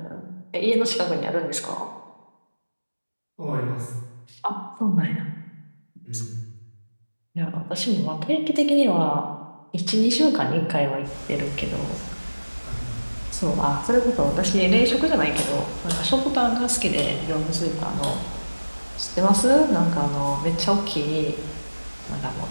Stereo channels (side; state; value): both; inverted; correlation -1.00